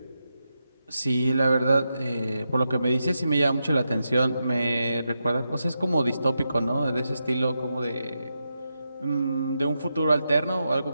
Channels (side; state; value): both; inverted; correlation -0.87